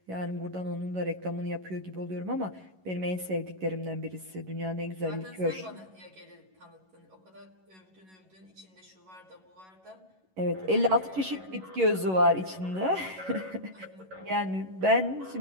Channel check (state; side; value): late; left; 11 ms